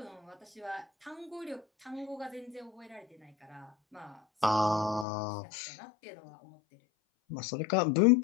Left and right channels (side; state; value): right; drops out; at 5.1 s